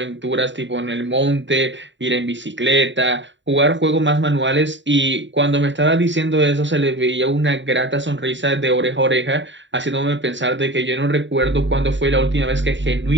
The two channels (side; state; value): left; late; 0.54 ms